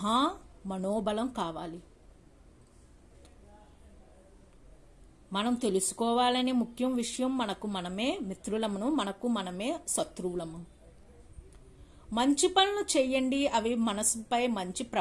మనోబలం కావాలి. మనం తెలుసుకోవాలనే ముఖ్యం విషయం, మనకు మనమే మిత్రులము, మనకు మనమే శత్రువులము. మంచి పనులు చేయండి, అవి మనసుపై మంచి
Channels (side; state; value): both; identical; correlation 1.00